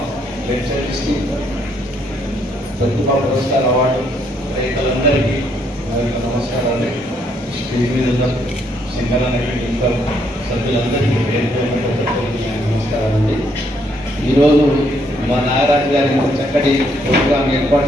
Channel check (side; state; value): both; normal; correlation 0.71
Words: ప్రతిభా పురస్కార అవార్డు రైతులందరికీ నా యొక్క నమస్కారాలు. స్టేజ్ మీద ఉన్న సింగరానికి ఇంకా సభ్యులందరికీ పేరు నమస్కారాలండి. ఈరోజు మా నాగరాజు గారి చక్కటి ప్రోగ్రాం